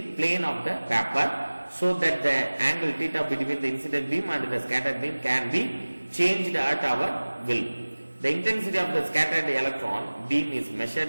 plane of the paper so that the angle theta between the incident beam and the scattered beam can be changed at our will. The intensity of the scattered electron beam is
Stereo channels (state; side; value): inverted; both; correlation -1.00